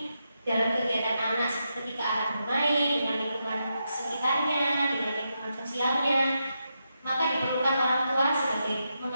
dalam kegiatan anak ketika anak bermain dengan lingkungan sekitarnya, dengan lingkungan sosialnya, maka diperlukan orang tua sebagai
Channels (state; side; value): inverted; both; correlation -0.85